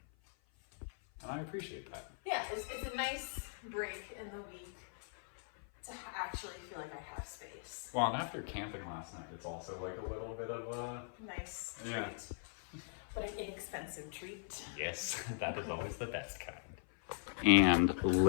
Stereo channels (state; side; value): silent; right; 51 dB below the other